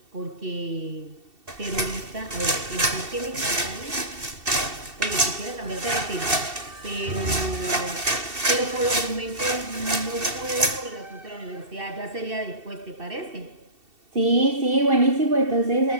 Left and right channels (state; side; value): late; left; 2.7 ms